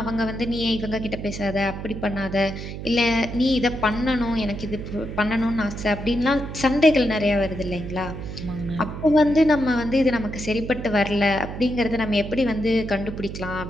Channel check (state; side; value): noise; right; hum, 8 dB below the sound